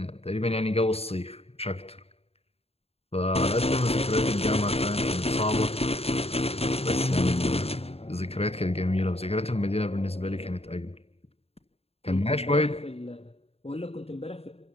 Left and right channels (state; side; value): late; right; 0.29 ms